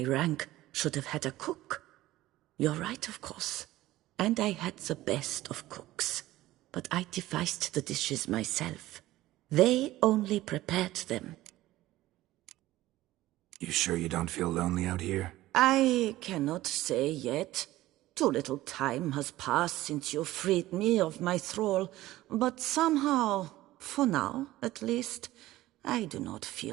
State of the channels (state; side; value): quieter; left; 16.3 dB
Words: rank should have had a cook? You're right, of course. And I had the best of cooks. But I devised the dishes myself. They only prepared them. You sure you don't feel lonely out here? I cannot say yet. Too little time has passed since you freed me of my thrall, but somehow, for now at least, I do not